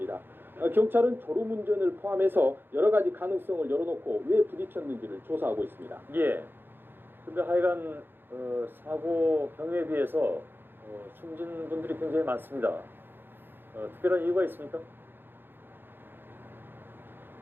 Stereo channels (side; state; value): left; late; 0.10 ms